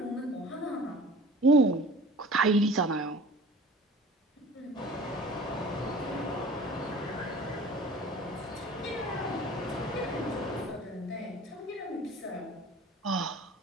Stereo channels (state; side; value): normal; both; correlation 0.43